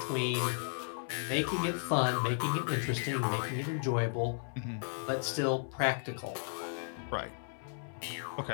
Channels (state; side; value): silent; right; digital silence